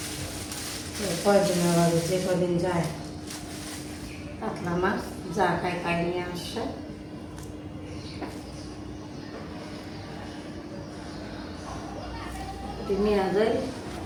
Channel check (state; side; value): identical; both; correlation 1.00